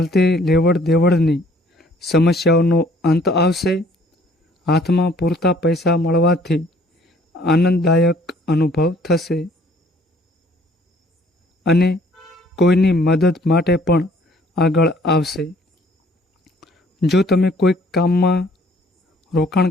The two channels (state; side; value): normal; both; correlation 0.59